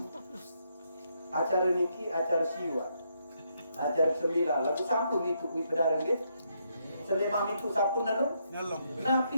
acara niki, acara siwa, acara sembilan, lagu satu itu kui pedaran ni, selama itu satu nalung, napi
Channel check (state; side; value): inverted; both; correlation -0.77